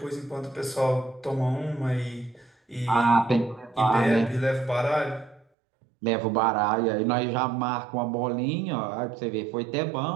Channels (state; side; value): drops out; left; at 5.5 s